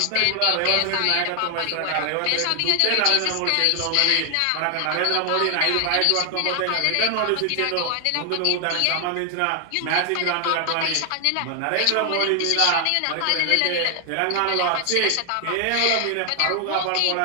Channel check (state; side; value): different; both; correlation 0.00